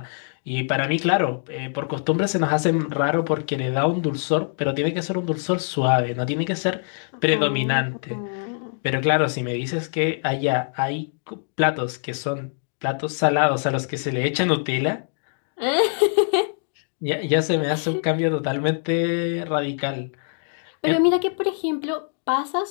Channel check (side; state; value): right; silent; digital silence